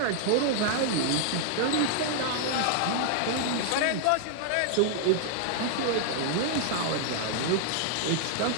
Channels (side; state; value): both; different; correlation 0.00